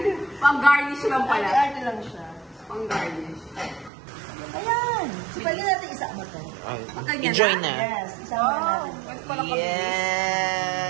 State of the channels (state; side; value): drops out; left; at 3.9 s